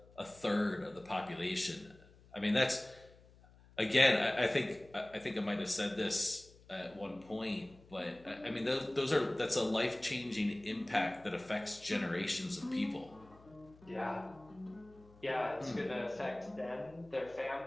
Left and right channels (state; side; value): noise; left; hum, 25 dB below the sound